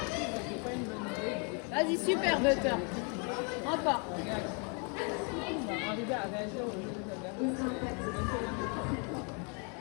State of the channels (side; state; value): right; quieter; 36.5 dB